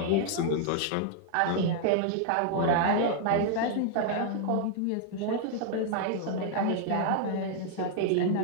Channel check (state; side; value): different; both; correlation 0.00